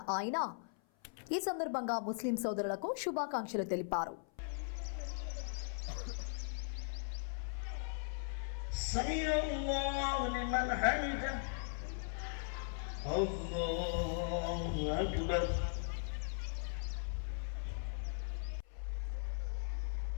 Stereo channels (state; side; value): silent; right; 52 dB below the other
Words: ఆయన ఈ సందర్భంగా ముస్లిం సోదరులకు శుభాకాంక్షలు తెలిపారు.